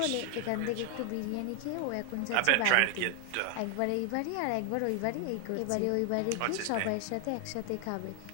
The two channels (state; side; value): different; both; correlation 0.00